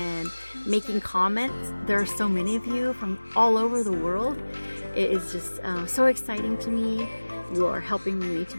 making comments. There are so many of you from all over the world. It is just so exciting to me. You are helping me to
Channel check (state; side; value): inverted; both; correlation -1.00